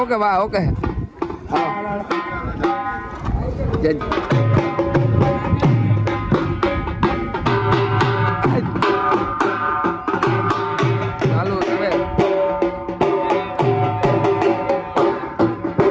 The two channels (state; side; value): identical; both; correlation 1.00